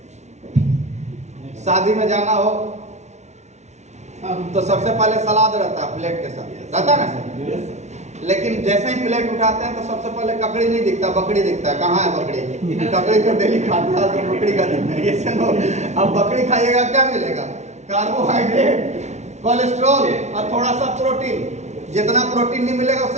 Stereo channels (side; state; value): left; late; 0.32 ms